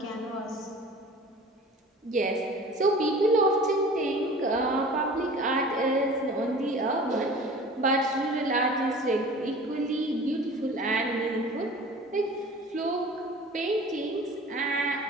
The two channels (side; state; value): both; normal; correlation 0.42